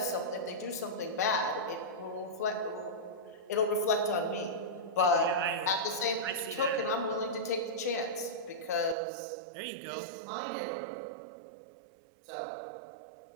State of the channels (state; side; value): drops out; left; at 9.0 s